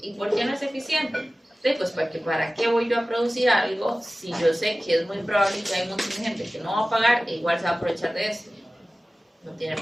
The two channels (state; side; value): normal; both; correlation 0.96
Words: ¿Y por qué no es eficiente? Sí, pues porque ¿para qué voy yo a producir algo si yo sé que es muy probable que hay un montón de gente que no va a pagar e igual se va a aprovechar de esto? No tiene